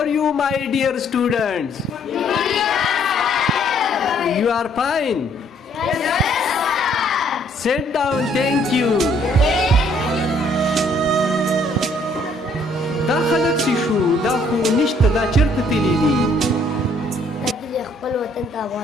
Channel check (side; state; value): both; normal; correlation 0.64